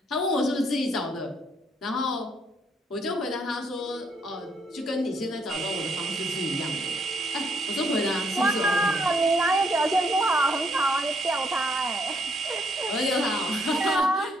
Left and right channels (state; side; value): normal; both; correlation 0.71